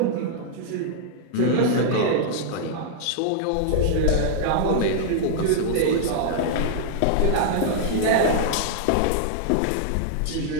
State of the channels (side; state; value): both; different; correlation -0.01